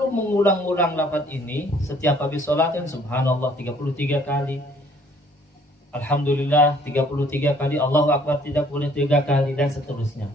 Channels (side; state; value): both; normal; correlation 0.60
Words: mengulang-ulang lafaz ini setiap habis sholat, kan Subhanallah 33 kali, Alhamdulillah 33 kali, Allahu Akbar 33 kali, dan seterusnya.